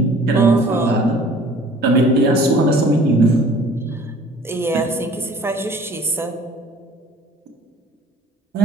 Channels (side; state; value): both; normal; correlation 0.51